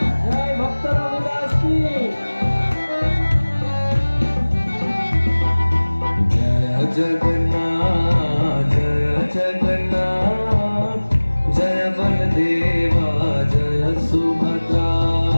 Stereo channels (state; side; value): inverted; both; correlation -1.00